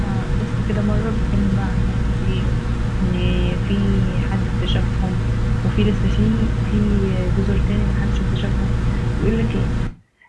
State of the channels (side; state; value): both; identical; correlation 1.00